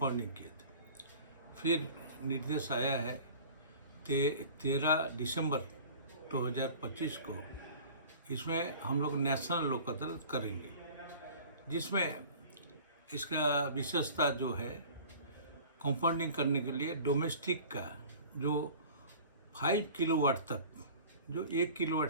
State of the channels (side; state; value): both; inverted; correlation -0.43